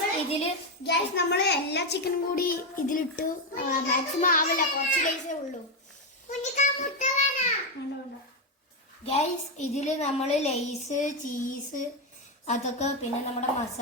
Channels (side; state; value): both; normal; correlation 0.07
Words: ഇതില് ഗ്യാസ് നമ്മള് എല്ലാ ചിക്കനും കൂടി ഇതിലിട്ടു. മാക്സിമം ആവില്ല, കുറച്ച് ലേസേ ഉള്ളൂ. ഗൈസ് ഇതില് നമ്മള് ലേസ്, ചീസ്, അതൊക്കെ പിന്നെ നമ്മുടെ